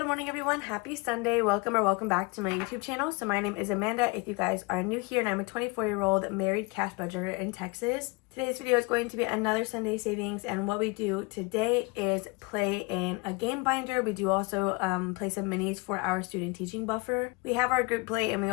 morning everyone. Happy Sunday. Welcome back to my YouTube channel. So my name is Amanda if you guys are new here, and I'm a 24-year-old married cash budgeter in Texas. Today's video is going to be another Sunday savings, and what we do today is play in a game binder. We do also play some minis for our student teaching buffer. We have our group play, and we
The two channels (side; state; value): right; quieter; 27.9 dB